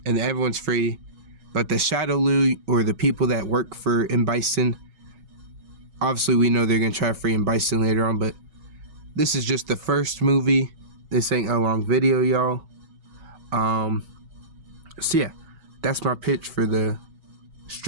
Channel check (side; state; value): left; late; 6.1 ms